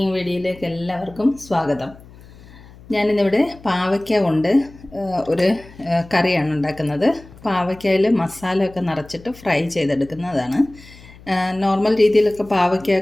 വീഡിയോയിലേക്ക് എല്ലാവർക്കും സ്വാഗതം. ഞാനിന്നിവിടെ പാവയ്ക്ക കൊണ്ട് ഒരു കറിയാണ് ഉണ്ടാക്കുന്നത്. പാവയ്ക്കയിൽ മസാലയൊക്കെ നിറച്ചിട്ട് ഫ്രൈ ചെയ്തെടുക്കുന്നതാണ്. നോർമൽ രീതിയിലൊക്കെ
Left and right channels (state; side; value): noise; left; hum, 21 dB below the sound